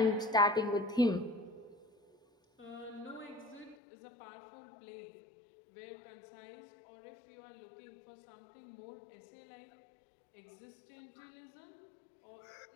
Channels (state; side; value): drops out; right; at 3.8 s